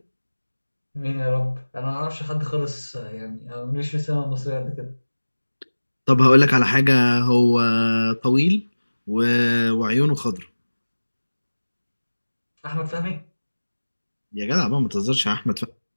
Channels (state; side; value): inverted; both; correlation -1.00